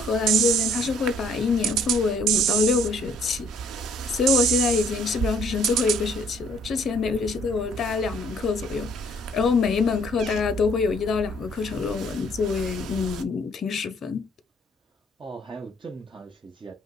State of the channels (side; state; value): both; normal; correlation 0.61